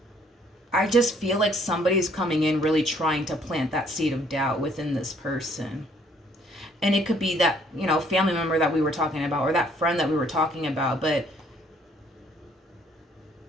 I just feel like somebody's coming in really trying to plant that seed of doubt within this person. And it could be that, family member that we were talking about or that friend that we were talking about. But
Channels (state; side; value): normal; both; correlation 0.63